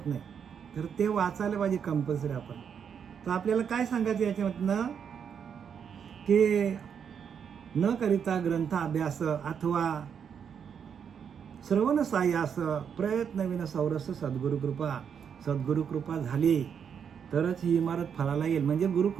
नाही. तर ते वाचायला पाहिजे कंपल्सरी आपण. तर आपल्याला काय सांगायचं याच्यामधनं की न करिता ग्रंथ अभ्यास अथवा श्रवण सायास प्रयत्नविन सौरस सद्गुरु कृपा झाली तरच ही इमारत फळाला येईल. म्हणजे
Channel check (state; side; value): quieter; left; 7.5 dB